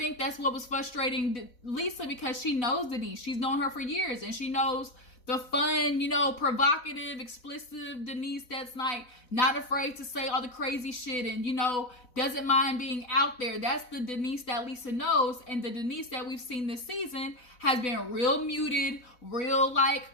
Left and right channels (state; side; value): late; right; 4.1 ms